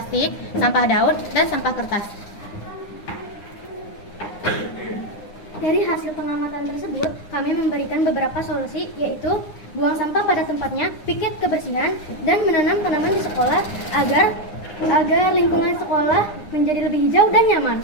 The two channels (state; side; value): late; right; 9.8 ms